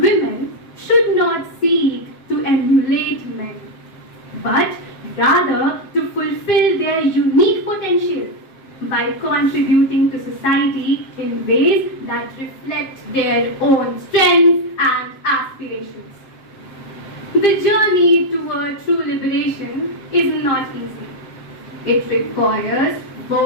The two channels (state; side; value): late; right; 7.7 ms